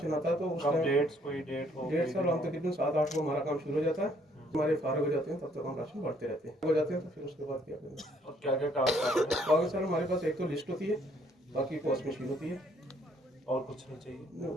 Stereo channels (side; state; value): both; normal; correlation 0.65